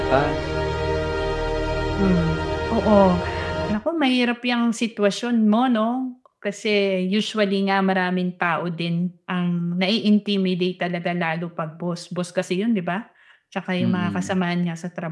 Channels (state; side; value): identical; both; correlation 1.00